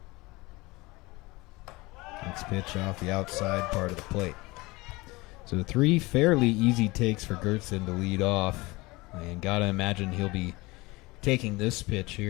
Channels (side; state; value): right; quieter; 22.6 dB